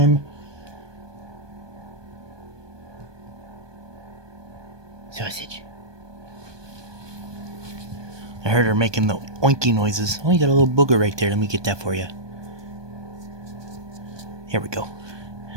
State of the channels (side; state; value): left; late; 1.2 ms